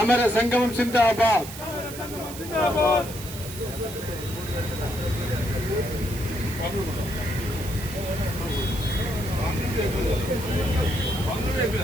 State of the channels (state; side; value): noise; right; hiss, 12 dB below the sound